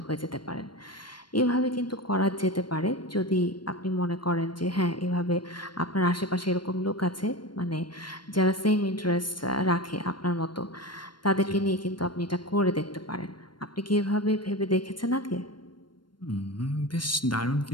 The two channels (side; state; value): right; late; 0.72 ms